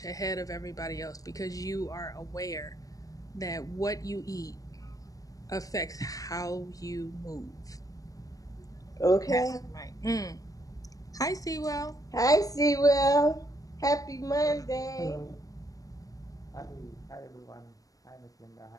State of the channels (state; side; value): late; right; 0.17 ms